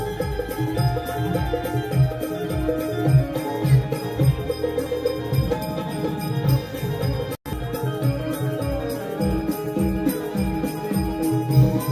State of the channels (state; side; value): identical; both; correlation 1.00